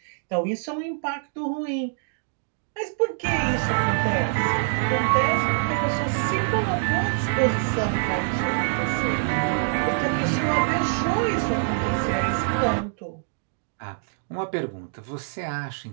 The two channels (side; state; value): left; silent; digital silence